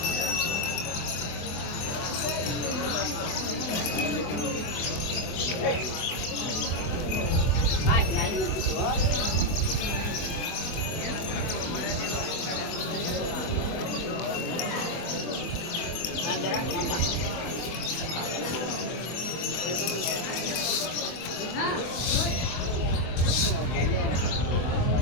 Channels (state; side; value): late; right; 24 ms